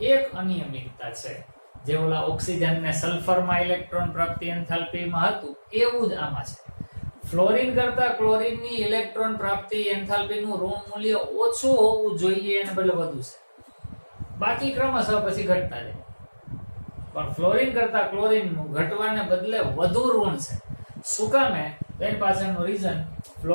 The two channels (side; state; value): both; inverted; correlation -1.00